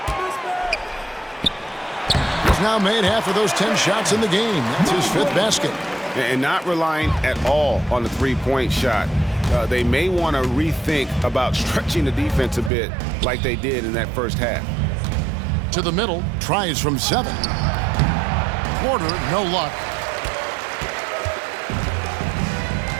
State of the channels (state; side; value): drops out; left; at 12.7 s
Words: He's now made half of those 10 shots in the game. That's his 5th basket. And not relying at all on the three-point shot. They may want to rethink about stretching the defense a bit like they did in that first half. To the middle, tries from 7. Porter, no luck.